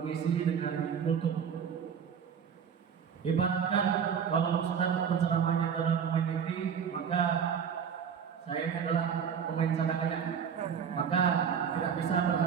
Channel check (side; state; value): left; quieter; 7.4 dB